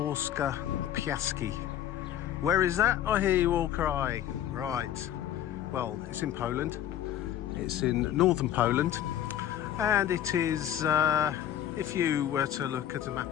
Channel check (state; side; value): quieter; right; 11.0 dB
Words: Piaski. Where is that? I hear you all crying. Right, well, it's in Poland. It's in northern Poland, and it is, if you were to look at a